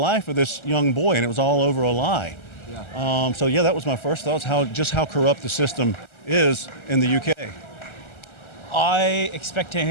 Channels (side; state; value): right; late; 1.3 ms